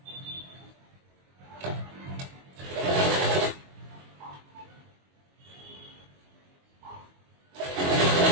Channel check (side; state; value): left; late; 22 ms